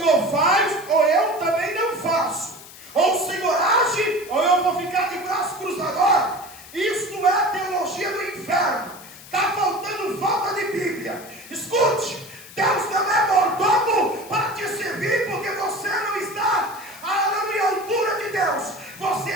faz, ou eu também não faço. Ou o Senhor age, ou eu vou ficar de braço cruzado. Isso é a teologia do inferno. Está faltando falta de Bíblia. Escute, Deus não é mordomo para te servir, porque você não está à altura de Deus. Você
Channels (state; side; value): noise; left; hiss, 18 dB below the sound